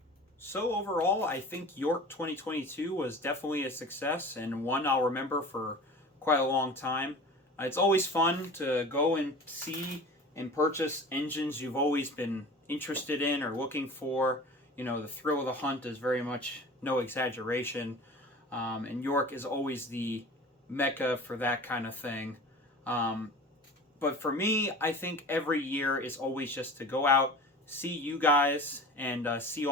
So overall, I think York 2022 was definitely a success, and one I'll remember for quite a long time. It's always fun to go and see and purchase engines you've always been interested in or looking for. You know, the thrill of the hunt is very much no exaggeration, and York is always the mecca for that kind of thing. But for me, I think every year is always just to go out, see you guys, and see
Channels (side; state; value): both; normal; correlation 0.38